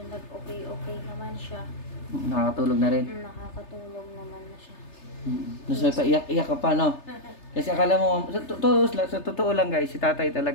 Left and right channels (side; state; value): right; late; 3.3 ms